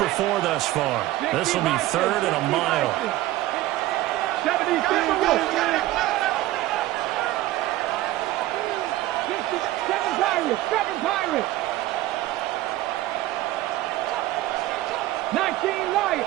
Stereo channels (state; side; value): quieter; left; 16.1 dB